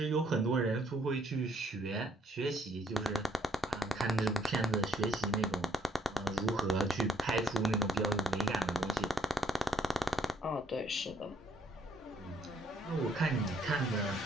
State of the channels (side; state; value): both; normal; correlation 0.67